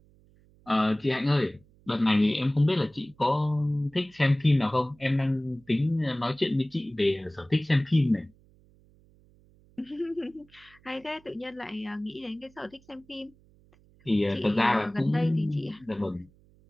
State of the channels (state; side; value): noise; right; hum, 29 dB below the sound